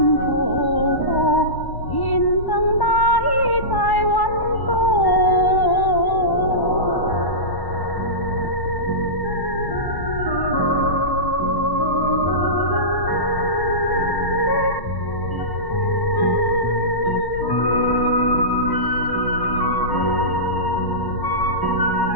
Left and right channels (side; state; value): right; late; 1.1 ms